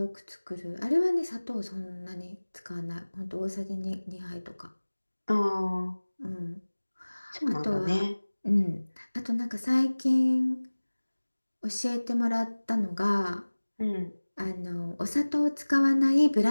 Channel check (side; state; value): both; inverted; correlation -1.00